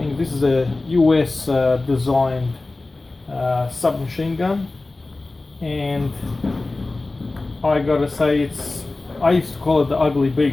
this is a US designed submachine gun, and I gotta say, I used to call it the ugly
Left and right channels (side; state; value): right; quieter; 3.2 dB